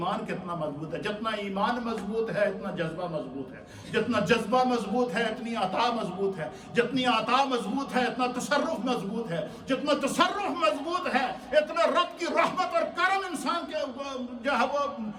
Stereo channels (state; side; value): identical; both; correlation 1.00